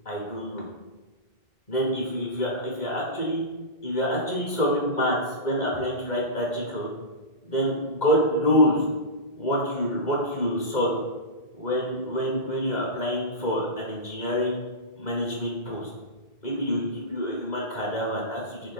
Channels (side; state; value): right; late; 2.1 ms